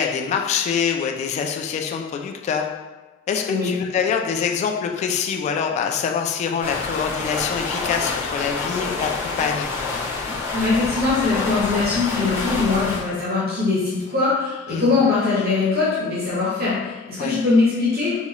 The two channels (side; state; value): right; quieter; 4.3 dB